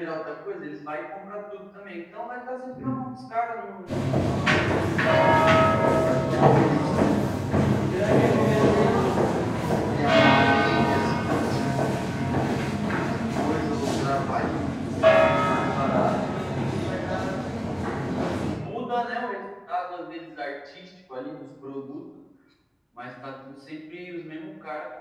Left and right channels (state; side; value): identical; both; correlation 1.00